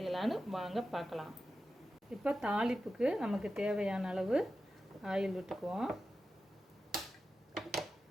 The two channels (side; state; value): both; normal; correlation 0.92